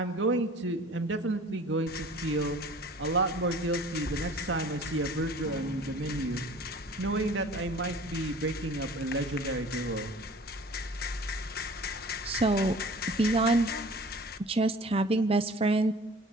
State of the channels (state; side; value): normal; both; correlation 0.46